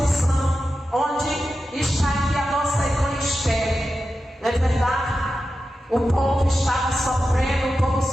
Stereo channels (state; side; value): normal; both; correlation 0.91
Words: onde está aqui a nossa irmã Esther. Não é verdade? O povo estava sofrendo, o povo